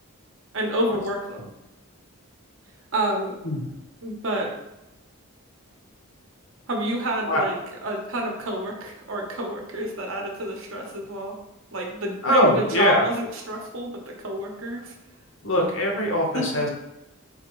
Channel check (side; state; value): both; normal; correlation 0.04